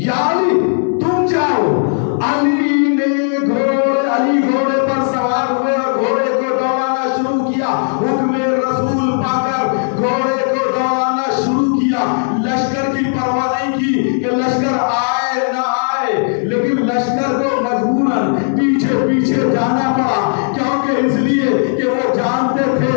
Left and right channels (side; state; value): right; silent; 67 dB below the other